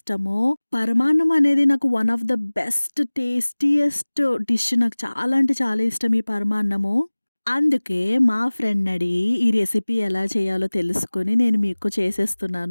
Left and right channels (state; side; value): inverted; both; correlation -1.00